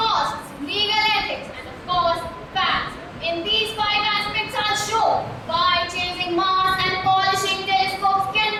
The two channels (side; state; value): both; identical; correlation 1.00